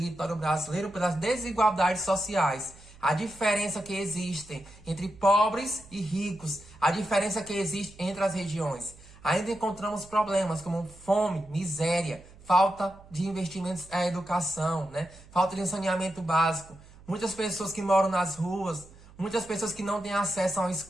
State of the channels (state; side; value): noise; right; hum, 22 dB below the sound